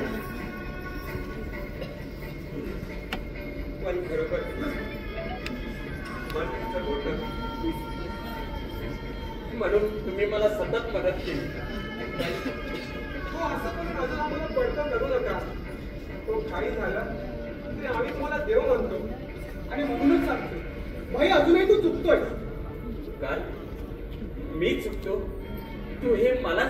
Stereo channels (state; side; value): identical; both; correlation 1.00